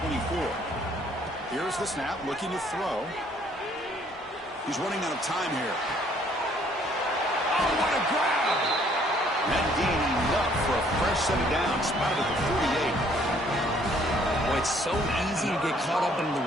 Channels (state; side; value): normal; both; correlation 0.62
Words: Here's the snap, looking to throw. He's running out of time here. Oh, what a grab! That gain enough for a fresh set of downs, spotted at the 48. Well, it's so easy to get caught up in the